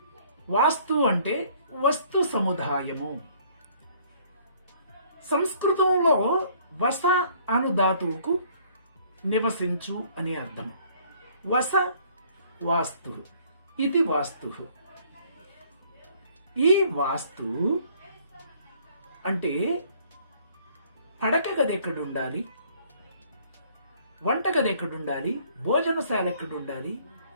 వాస్తు అంటే వస్తు సముదాయము. సంస్కృతంలో వస అను ధాతువుకు నివసించు అని అర్థం. వస వాస్తు, ఇది వాస్తు. ఈ వాస్తు అంటే పడక గది ఎక్కడుండాలి, వంటగది ఎక్కడుండాలి, భోజనశాల ఎక్కడుండాలి,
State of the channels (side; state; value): both; inverted; correlation -0.59